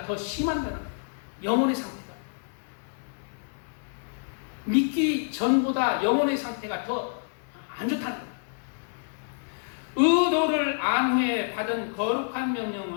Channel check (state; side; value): silent; right; digital silence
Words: 더 심한다는 영혼의 상태가 믿기 전보다 영혼의 상태가 더 안 좋다는 거예요. 의도를 안 후에 받은 거룩한